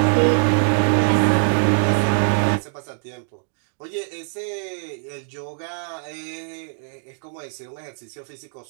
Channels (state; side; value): silent; left; digital silence